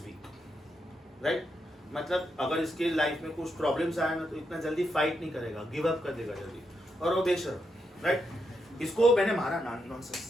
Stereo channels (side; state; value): both; normal; correlation 0.82